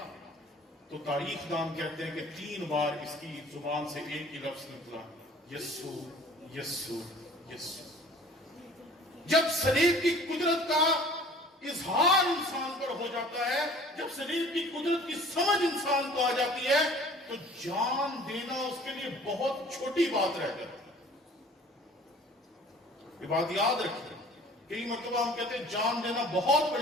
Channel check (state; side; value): normal; both; correlation 0.49